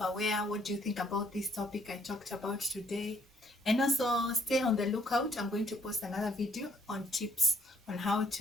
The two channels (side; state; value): both; normal; correlation 0.65